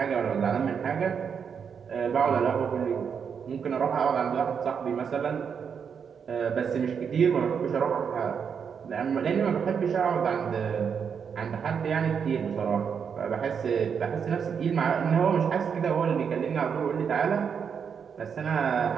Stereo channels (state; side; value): quieter; left; 6.8 dB